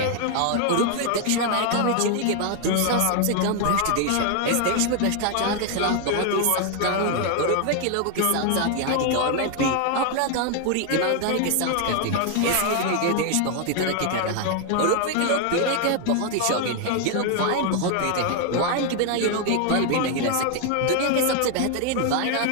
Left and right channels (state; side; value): different; both; correlation 0.00